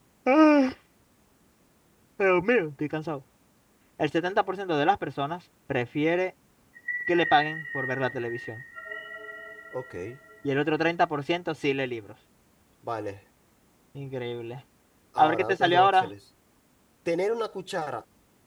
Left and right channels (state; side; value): identical; both; correlation 1.00